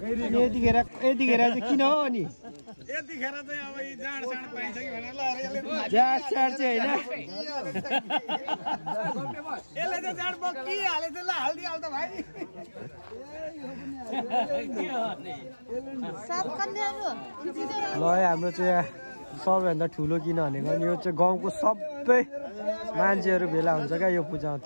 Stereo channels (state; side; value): inverted; both; correlation -1.00